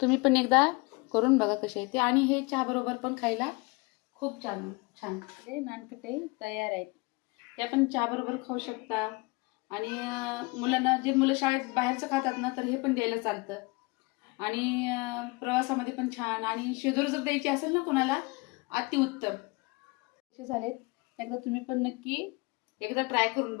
पण एकदा करून बघा कसे आहे ते. आणि हे चहा बरोबर पण खायला खूप छान. हे नानकटे तयार आहेत. ते आपण चहा बरोबर खाऊ शकता. आणि मुलांना, जे मुलं शाळेत बाहेरचं खातात ना, तर हे पण द्यायला चालतं. आणि प्रवासामध्ये पण छान. आणि शेजारी जर द्यायची असेल ना कोणाला, अतिउत्तम. कसे झालेत एकदा तुम्ही पण नक्की एकदा ट्राय करून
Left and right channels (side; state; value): right; quieter; 26.4 dB